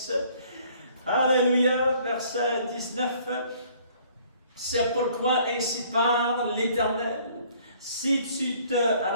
Alléluia, verset 19. C'est pourquoi ainsi parle l'Éternel. Si tu te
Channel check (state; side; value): inverted; both; correlation -0.59